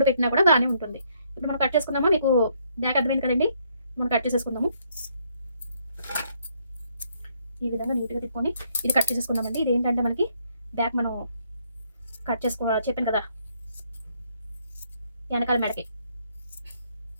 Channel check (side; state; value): both; inverted; correlation -0.70